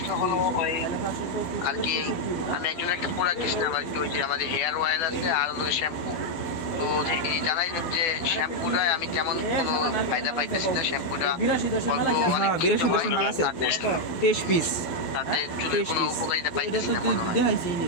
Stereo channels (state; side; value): late; right; 12 ms